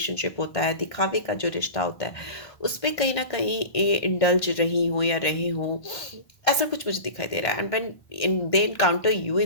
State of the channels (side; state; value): right; late; 1.5 ms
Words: होता है, दिखावे का जो रिश्ता होता है, उस पे कहीं ना कहीं इंडल्ज रही हो या रहे हो, ऐसा कुछ मुझे दिखाई दे रहा है। And when they encounter you